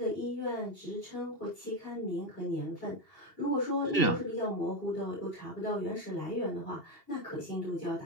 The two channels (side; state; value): right; late; 2.8 ms